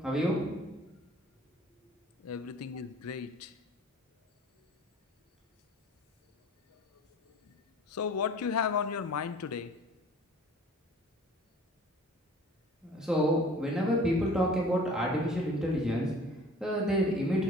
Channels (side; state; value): both; normal; correlation 0.47